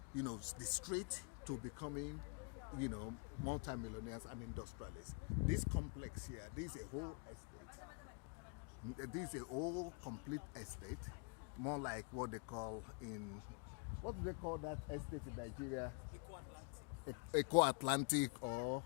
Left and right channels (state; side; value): quieter; right; 38.1 dB